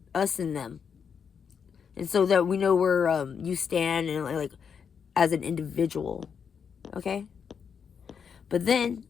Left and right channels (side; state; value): right; quieter; 6.8 dB